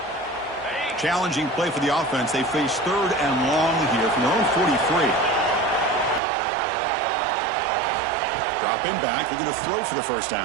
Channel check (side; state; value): left; drops out; at 6.2 s